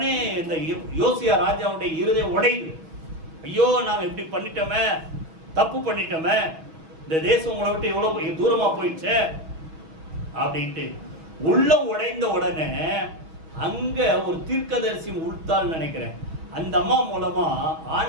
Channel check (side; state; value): left; late; 6.2 ms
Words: இந்த யோசியா ராஜாவுடைய இருதயம் உடையுது. ஐயோ நாங்க இப்படி பண்ணிட்டோமே, தப்பு பண்ணிட்டோமே, இந்த தேசம் உங்களை விட்டு எவ்வளவு தூரமா போயிடுச்சு அப்படின்ட்டு உள்ளம் உடைந்த உடனே அங்க ஒரு தீர்க்கதரிசி உள்தால் நினைக்கிறேன், அந்த அம்மா மூலமா